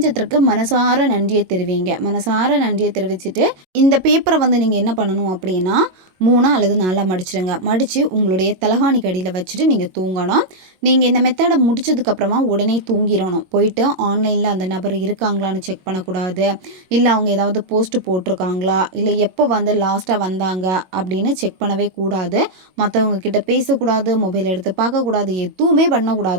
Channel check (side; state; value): left; late; 22 ms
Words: மனசார நன்றியை தெரிவிங்க. மனசார நன்றியை தெரிவிச்சுட்டு இந்த பேப்பரை வந்து நீங்கள் என்ன பண்ணணும் அப்படின்னா 3 அல்லது 4 மடிச்சிடுங்க. மடித்து உங்களுடைய தலகாணிக்கு அடியில் வச்சுட்டு நீங்கள் தூங்கணும். நீங்கள் இந்த மெத்தடை முடிச்சதுக்கப்புறமா உடனே தூங்கிடணும். போயிட்டு ஆன்லைனில் அந்த நபர் இருக்காங்களான்னு செக் பண்ணக்கூடாது. இல்லை அவங்க ஏதாவது போஸ்ட் போட்டிருக்காங்களா, இல்லை எப்போ வந்து லாஸ்ட்டாக வந்தாங்க அப்படின்னு செக் பண்ணவே கூடாது. மற்றவங்க கிட்ட பேசக்கூடாது, மொபைல் எடுத்து பார்க்கக்கூடாது, எதுவுமே